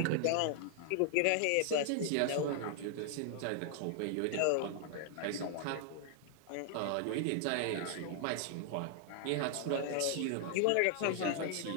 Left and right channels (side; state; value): both; different; correlation 0.00